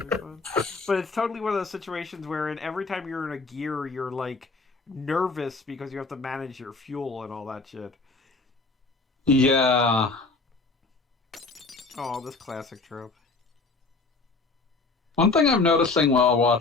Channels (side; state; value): right; quieter; 3.9 dB